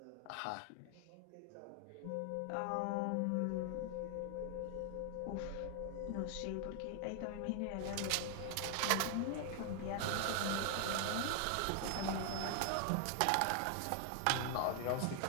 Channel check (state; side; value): different; both; correlation 0.00